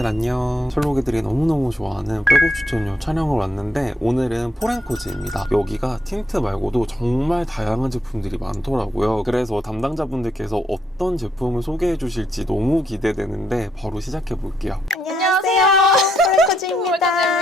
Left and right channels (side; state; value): both; normal; correlation 0.77